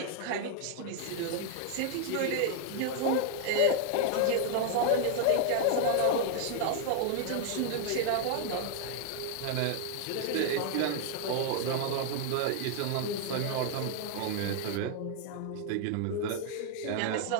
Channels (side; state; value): both; different; correlation 0.00